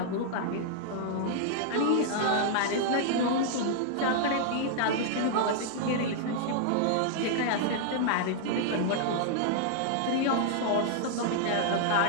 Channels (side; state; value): both; different; correlation -0.01